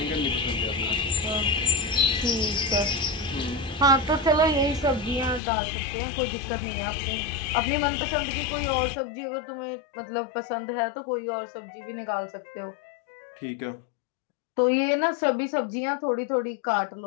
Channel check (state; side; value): drops out; right; at 5.4 s